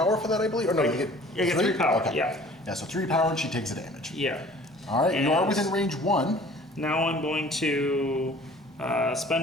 for that, I believe? Or no, you get 3 power, okay. Yeah. Yeah, so 3 power and she takes a damage. Yeah. All right, and you are within range 1. Now I'm going to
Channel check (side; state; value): both; normal; correlation 0.49